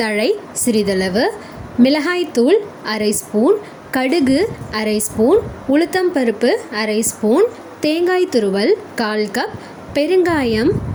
தழை சிறிதளவு, மிளகாய்த்தூள் அரை ஸ்பூன், கடுகு அரை ஸ்பூன், உளுத்தம்பருப்பு அரை ஸ்பூன், தேங்காய் துருவல் 1/4 கப், பெருங்காயம்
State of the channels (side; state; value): both; identical; correlation 1.00